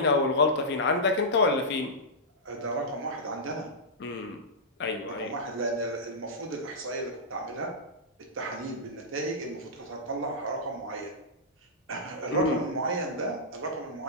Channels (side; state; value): both; normal; correlation -0.13